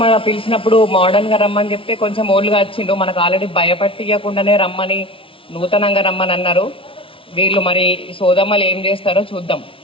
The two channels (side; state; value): right; late; 0.26 ms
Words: మన పిలిచినప్పుడు మోడర్న్గా రమ్మని చెప్తే కొంచెం ఓల్డ్గా వచ్చిండ్రు. మనకు ఆల్రెడీ భయపట్టియకుండానే రమ్మని, నూతనంగా రమ్మని అన్నారు. వీళ్ళు మరి సోదమ్మలు ఏం చేస్తారో చూద్దాం.